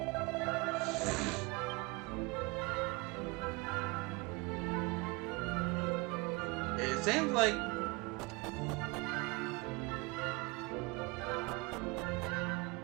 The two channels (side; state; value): left; quieter; 26.3 dB